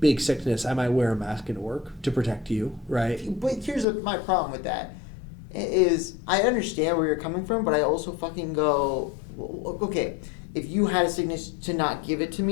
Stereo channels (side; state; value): right; drops out; at 3.9 s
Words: sickness, I might wear a mask into work to protect you, right? But here's my problem with that is I understand where you're coming from, but I also fucking go, okay, if you had a sickness to not give it to